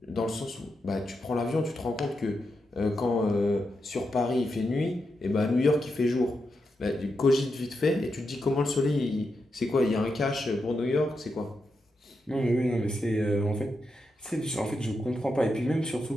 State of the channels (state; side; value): normal; both; correlation 0.86